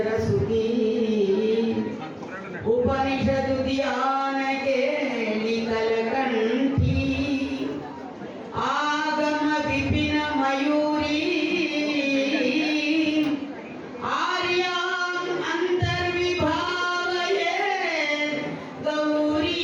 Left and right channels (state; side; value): identical; both; correlation 1.00